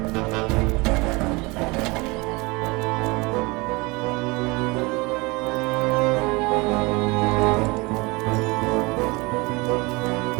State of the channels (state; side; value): quieter; left; 25.2 dB